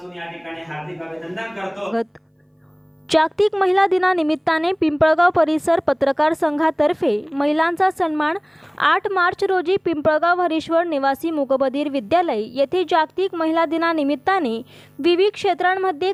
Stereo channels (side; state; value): both; identical; correlation 1.00